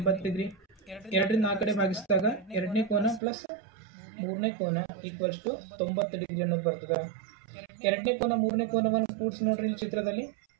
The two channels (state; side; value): drops out; left; at 3.2 s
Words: ಡಿಗ್ರಿ. 2ರಿಂದ ಆ ಕಡೆ ಭಾಗಿಸಿದಾಗ ಎರಡನೇ ಕೋನ ಪ್ಲಸ್ ಮೂರನೇ ಕೋನ ಈಕ್ವಲ್ಸ್ ಟು 90 ಡಿಗ್ರಿ ಅನ್ನೋದು ಬರ್ತದೆ. ಎರಡನೇ ಕೋನ ಮೂರನೇ ಕೋನವನ್ನು ಕೂಡಿಸಿ ನೋಡ್ರಿ ಇಲ್ಲಿ ಚಿತ್ರದಲ್ಲಿ.